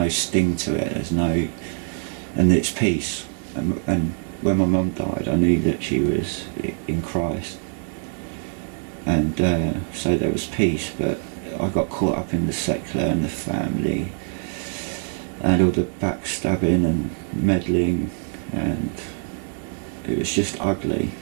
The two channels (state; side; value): silent; left; 63 dB below the other